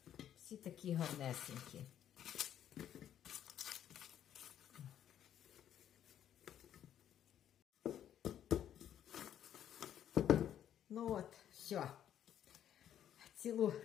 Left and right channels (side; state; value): right; quieter; 10.3 dB